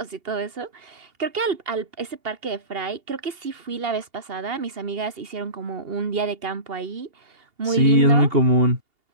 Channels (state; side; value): late; left; 2.8 ms